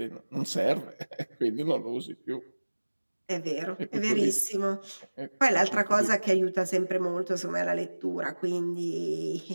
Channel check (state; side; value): inverted; both; correlation -1.00